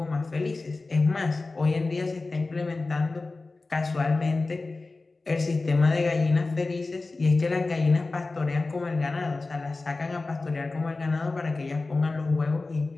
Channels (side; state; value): right; quieter; 3.5 dB